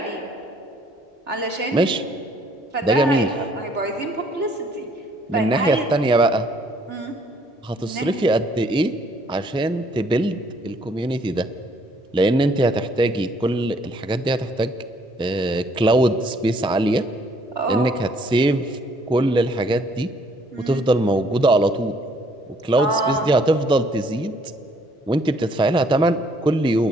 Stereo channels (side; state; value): both; normal; correlation 0.64